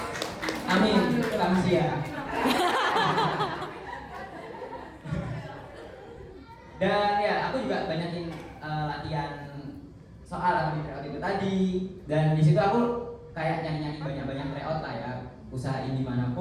Amin, manusia. Dan ya aku juga banyakin latihan soal atau di tryout itu tadi, dan di situ aku kayak nyanyi banyak tryout lah ya, usahain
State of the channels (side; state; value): both; identical; correlation 1.00